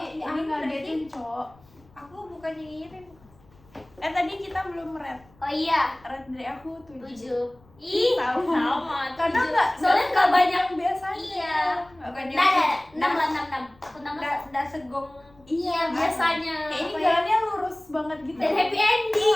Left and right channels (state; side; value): noise; left; rumble, 28 dB below the sound